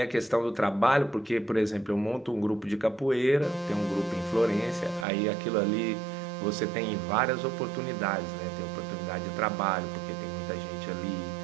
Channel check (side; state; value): left; drops out; at 5.1 s